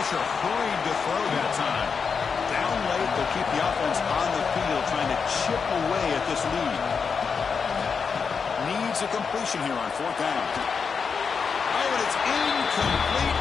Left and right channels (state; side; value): quieter; right; 5.7 dB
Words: hurried to throw that time. Down late, they'll keep the offense on the field trying to chip away at this lead. Needs a completion here on fourth down. Oh, and it's incomplete,